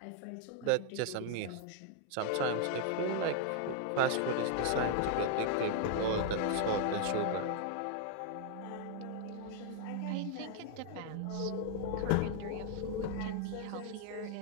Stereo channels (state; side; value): different; both; correlation 0.00